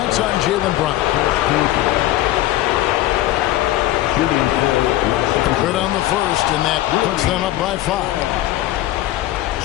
on Jaylen Brown. Good on the first, and that puts them up by 5.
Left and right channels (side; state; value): right; quieter; 15.1 dB